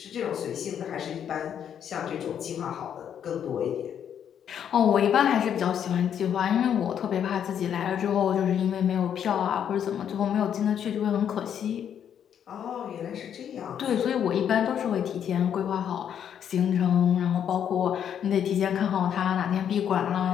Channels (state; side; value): quieter; right; 8.9 dB